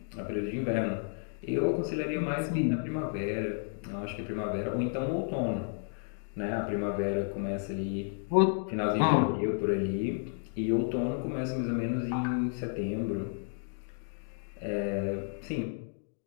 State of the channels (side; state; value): right; silent; digital silence